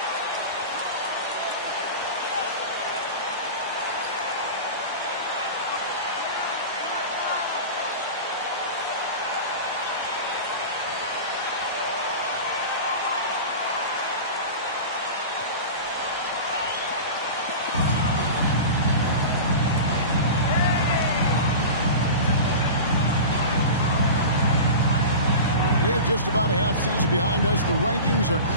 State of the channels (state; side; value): inverted; both; correlation -0.30